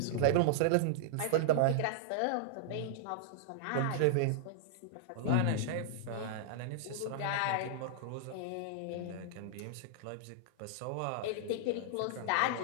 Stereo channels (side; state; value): both; different; correlation -0.01